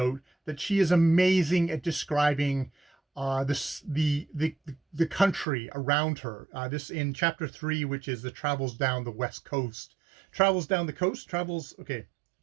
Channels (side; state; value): left; drops out; at 5.5 s